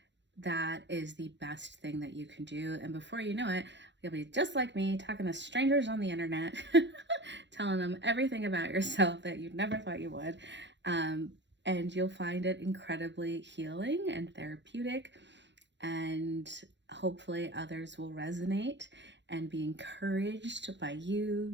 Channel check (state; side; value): late; left; 0.52 ms